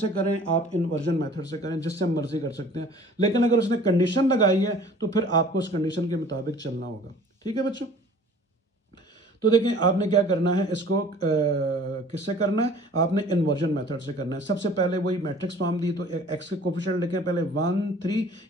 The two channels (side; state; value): both; normal; correlation 0.49